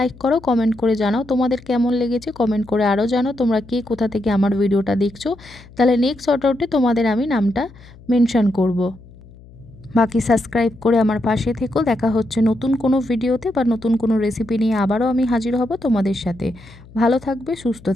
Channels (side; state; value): left; noise; hum, 22 dB below the sound